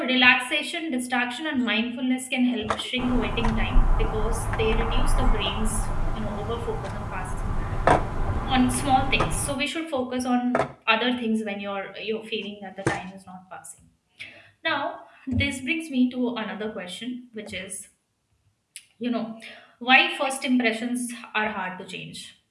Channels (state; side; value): identical; both; correlation 1.00